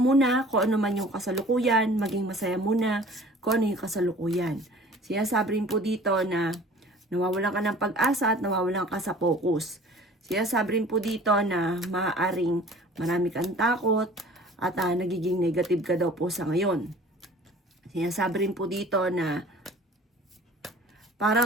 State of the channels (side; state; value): both; normal; correlation 0.47